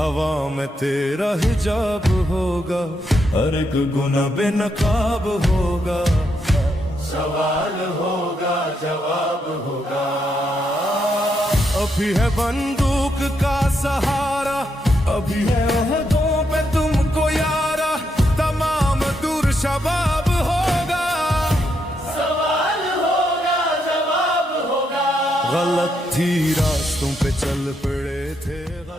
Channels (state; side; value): normal; both; correlation 0.79